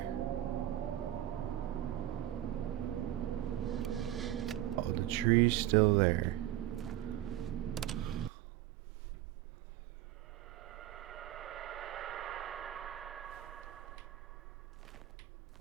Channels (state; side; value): quieter; left; 13.6 dB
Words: Oh, the tree's still there.